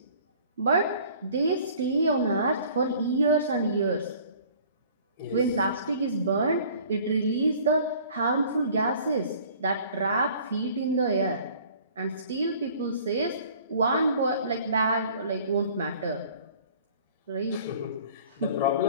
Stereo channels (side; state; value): both; inverted; correlation -0.51